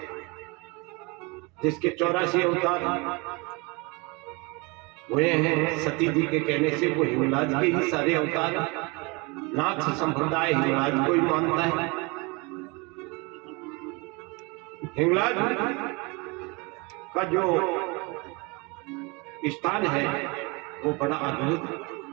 जिसके 84 अवतार हुए हैं सती जी के कहने से, वो हिंगलाज के ही सारे अवतार। नाथ संप्रदाय हिंगलाज को ही मानता है। हिंगलाज का जो स्थान है वो बड़ा अद्भुत है।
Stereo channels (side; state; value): left; quieter; 27.9 dB